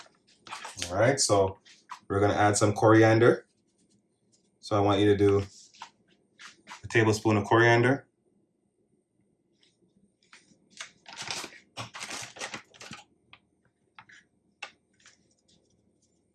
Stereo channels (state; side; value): identical; both; correlation 1.00